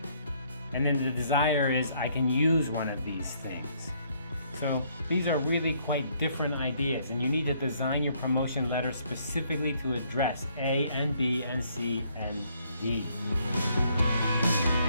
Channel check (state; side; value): inverted; both; correlation -0.68